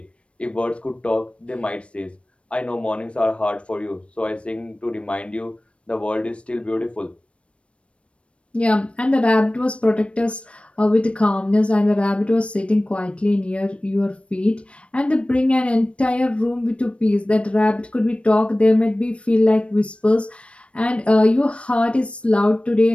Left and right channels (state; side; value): late; right; 0.060 ms